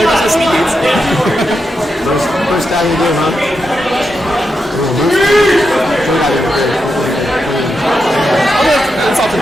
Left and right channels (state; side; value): normal; both; correlation 0.86